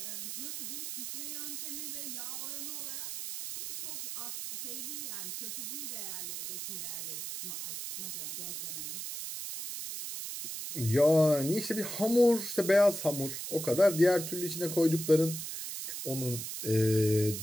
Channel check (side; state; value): right; noise; hiss, 6 dB below the sound